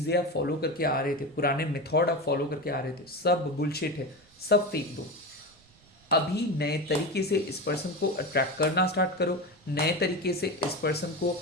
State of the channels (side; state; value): right; noise; rumble, 30 dB below the sound